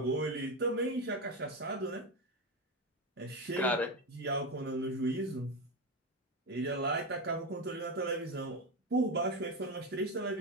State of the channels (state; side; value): normal; both; correlation 0.15